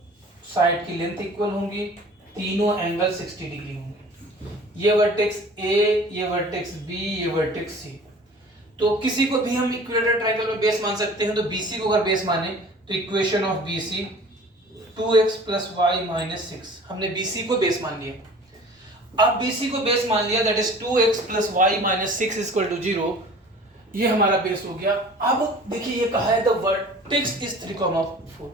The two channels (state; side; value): normal; both; correlation 0.45